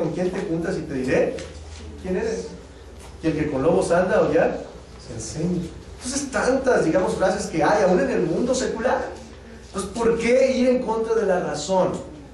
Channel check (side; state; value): both; identical; correlation 1.00